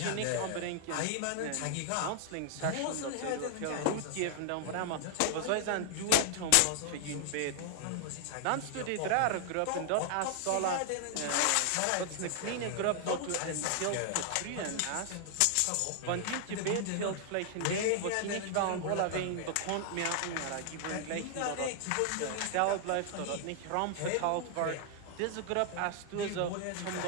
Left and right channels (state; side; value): different; both; correlation 0.00